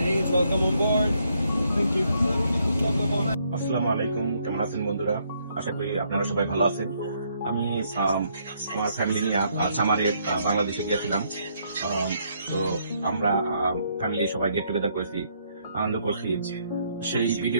Welcome on board. Thank you. আসসালামু আলাইকুম, কেমন আছেন বন্ধুরা? আশা করি আপনারা সবাই ভালো আছেন। আমি আমার ফ্যামিলি নিয়ে সামারে বাংলাদেশে গিয়েছিলাম। তো আমরা ফ্যামিলি সবাই গেট টুগেদার করেছি, আনন্দ করছি। সেই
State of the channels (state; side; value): inverted; both; correlation -0.72